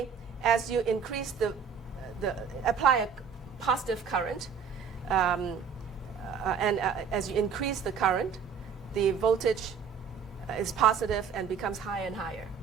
as you increase apply a positive current, and as you increase the current, the voltage is positive and becomes higher and higher.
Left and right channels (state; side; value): quieter; left; 6.5 dB